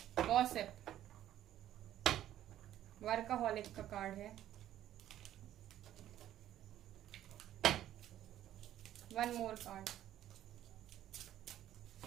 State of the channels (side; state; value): left; quieter; 12.3 dB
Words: गॉसिप, वर्कaholic का कार्ड है। One more card,